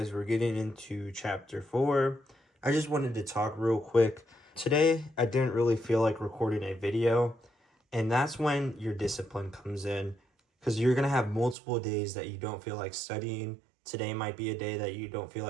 we're getting into chapter 4. I just wanted to talk real quick. Today, I didn't really feel like recording a video, and that's when your discipline comes in, because you're going to have multiple days that you don't feel like studying. Today might be a day that you don't feel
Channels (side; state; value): left; drops out; at 11.6 s